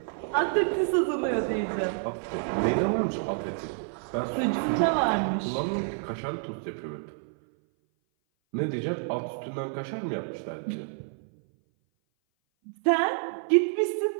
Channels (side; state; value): left; silent; 57 dB below the other